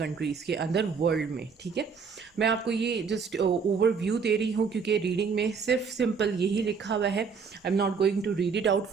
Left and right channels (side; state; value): left; quieter; 5.7 dB